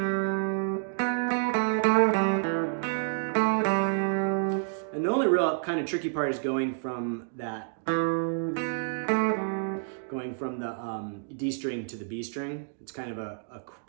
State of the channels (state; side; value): silent; left; digital silence